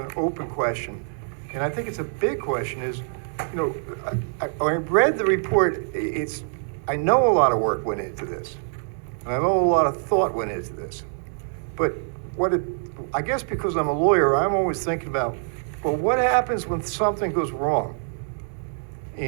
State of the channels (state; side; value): silent; left; 62 dB below the other